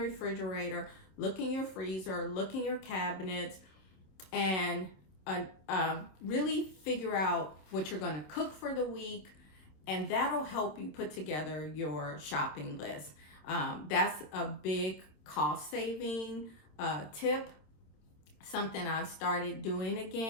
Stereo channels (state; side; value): late; right; 26 ms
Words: refrigerator, look in your freezer, look in your cabinets, and really figure out what you're going to cook for the week, and that'll help you put together your shopping list. That's a big cost saving tip, something I've started doing